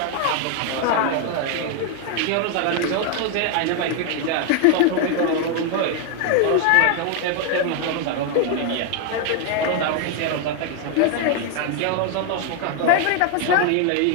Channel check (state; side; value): different; both; correlation 0.00